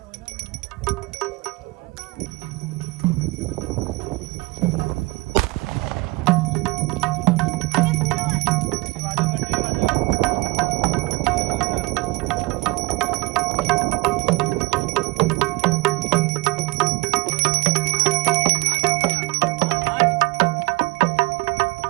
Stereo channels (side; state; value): left; quieter; 22.9 dB